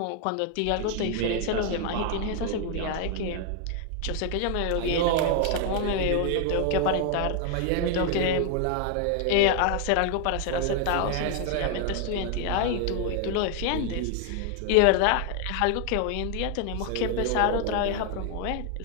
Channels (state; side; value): different; both; correlation 0.01